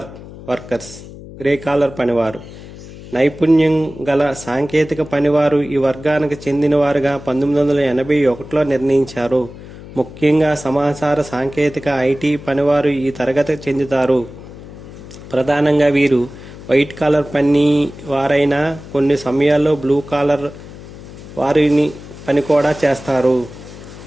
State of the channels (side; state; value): left; noise; hum, 16 dB below the sound